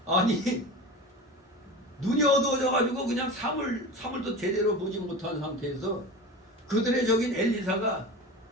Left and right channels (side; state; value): both; normal; correlation 0.30